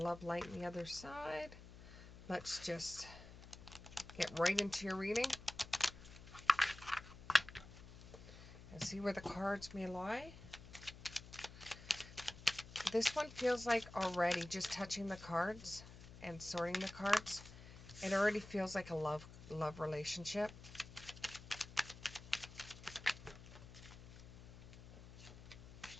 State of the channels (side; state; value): left; noise; hum, 16 dB below the sound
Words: Light, and the Other Side. Let's just get right into your reading and see where the cards may lie. This one feels like already just touching the cards and sorting the cards. It already feels like a love relationship.